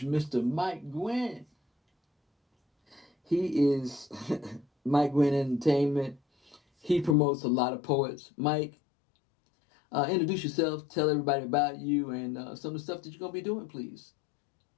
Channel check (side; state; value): right; drops out; at 7.2 s